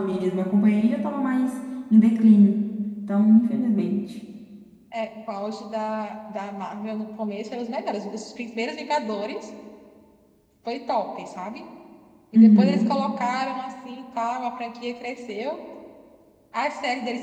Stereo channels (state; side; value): identical; both; correlation 1.00